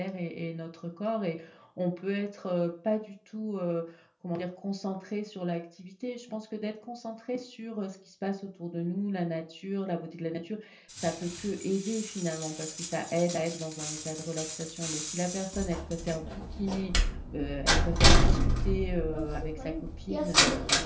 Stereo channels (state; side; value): identical; both; correlation 1.00